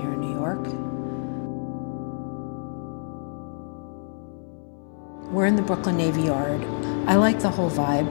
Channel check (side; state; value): right; silent; 61 dB below the other